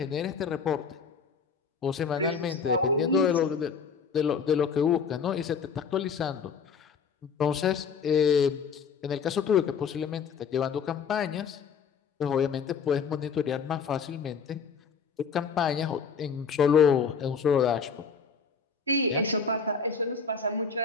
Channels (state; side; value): quieter; right; 5.9 dB